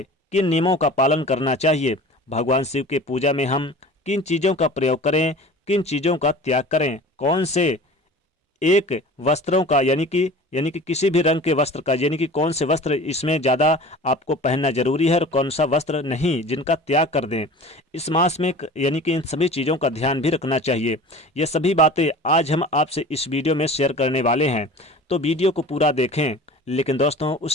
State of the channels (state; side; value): normal; both; correlation 0.40